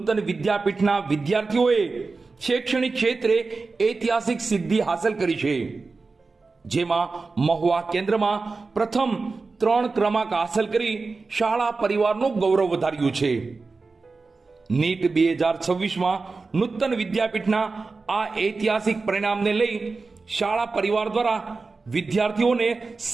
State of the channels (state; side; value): quieter; left; 4.0 dB